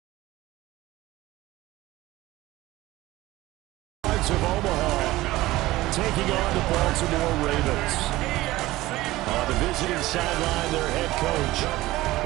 Hogs of Omaha taking on the Baltimore Ravens. On the visiting sideline, their head coach.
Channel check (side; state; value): left; quieter; 17.7 dB